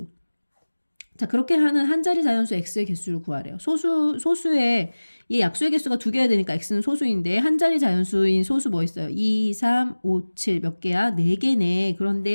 자, 그렇게 하는 한 자리 자연수 x의 개수를 구하래요. 소수의 이 약수의 개수가 2개야 되니까 x는 소수인데 한 자리 자연수인 소수 뭐 있어요? 2, 3, 5, 7 몇 개야? 4개네.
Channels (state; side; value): inverted; both; correlation -1.00